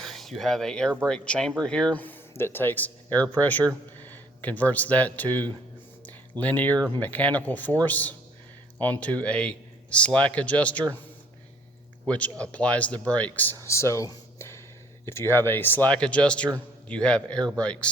you have an air brake chamber here that takes air pressure, converts that to linear mechanical force onto a slack adjuster, which applies the brakes. So if you have a slack adjuster, you have air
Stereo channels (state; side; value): normal; both; correlation 0.59